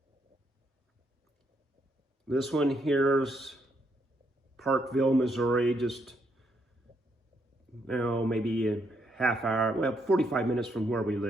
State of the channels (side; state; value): both; normal; correlation 0.75